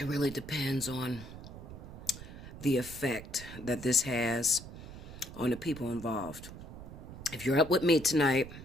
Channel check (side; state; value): right; noise; rumble, 13 dB below the sound